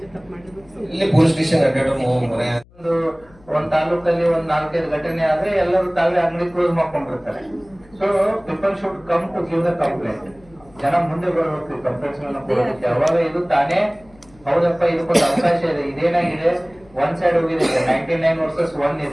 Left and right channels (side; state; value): left; noise; hum, 27 dB below the sound